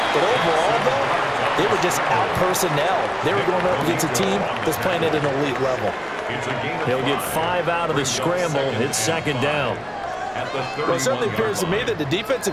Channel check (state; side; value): identical; both; correlation 1.00